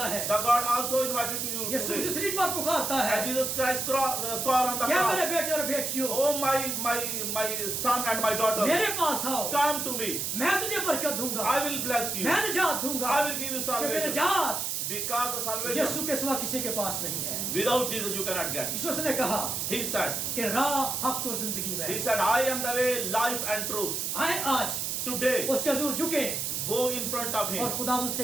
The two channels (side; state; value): right; noise; hiss, 1 dB below the sound